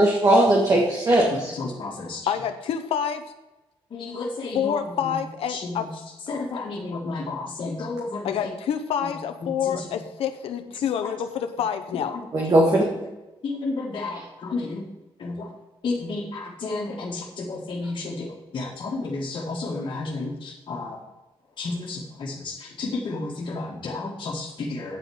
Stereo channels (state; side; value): normal; both; correlation 0.65